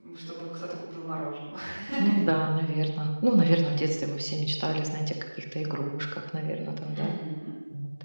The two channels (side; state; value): both; inverted; correlation -1.00